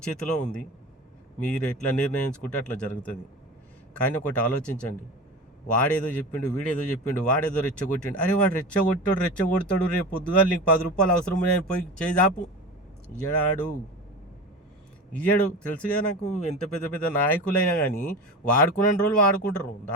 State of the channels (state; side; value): normal; both; correlation 0.30